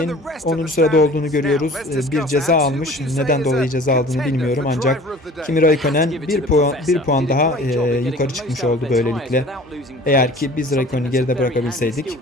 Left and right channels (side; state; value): both; normal; correlation 0.46